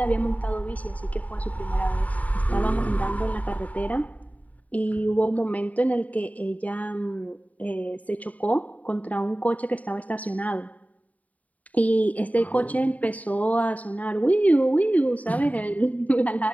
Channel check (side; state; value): right; late; 0.071 ms